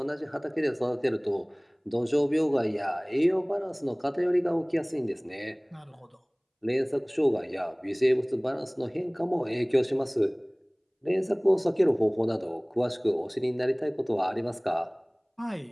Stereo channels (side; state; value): both; identical; correlation 1.00